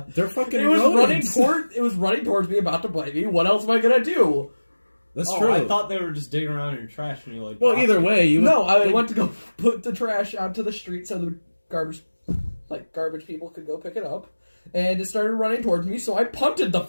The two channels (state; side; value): inverted; both; correlation -1.00